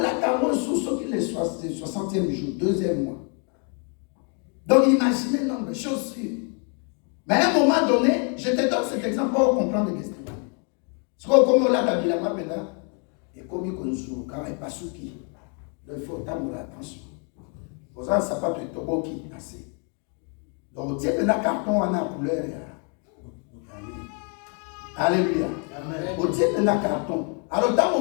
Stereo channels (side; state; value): right; quieter; 39.7 dB